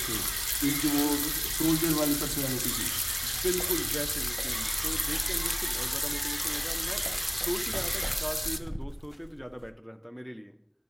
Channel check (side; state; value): both; identical; correlation 1.00